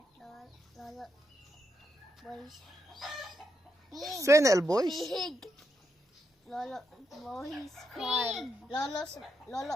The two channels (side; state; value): both; normal; correlation 0.81